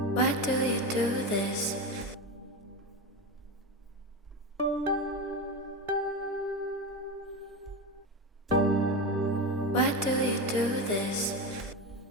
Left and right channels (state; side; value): normal; both; correlation 0.18